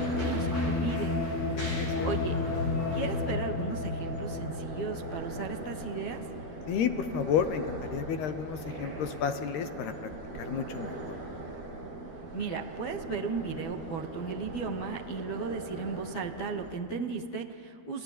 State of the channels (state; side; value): late; right; 13 ms